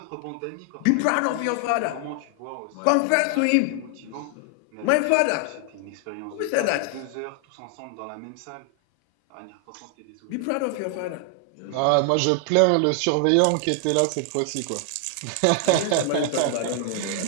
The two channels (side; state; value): both; different; correlation 0.00